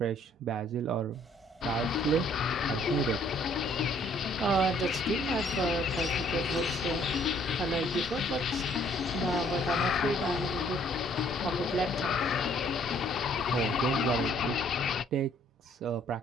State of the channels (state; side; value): normal; both; correlation 0.62